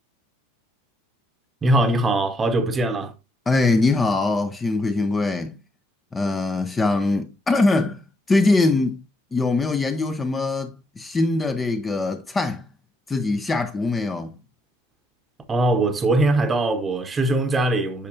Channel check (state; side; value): normal; both; correlation 0.76